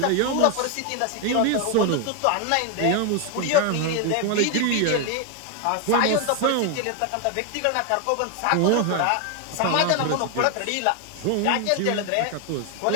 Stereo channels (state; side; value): different; both; correlation 0.01